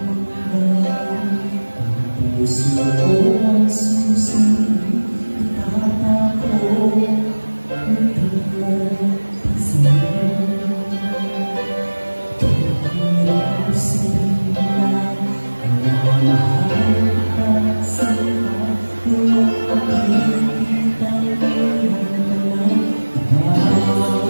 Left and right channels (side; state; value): both; inverted; correlation -1.00